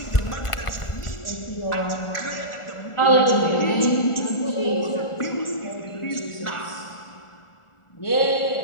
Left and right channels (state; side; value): late; right; 1.4 ms